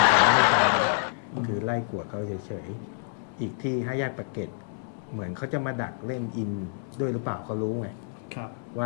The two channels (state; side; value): silent; right; digital silence